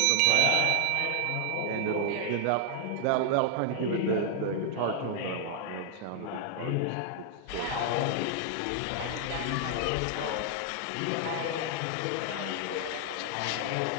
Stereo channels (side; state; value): both; different; correlation 0.00